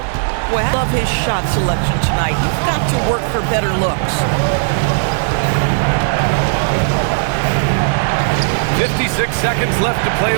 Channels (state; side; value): silent; left; digital silence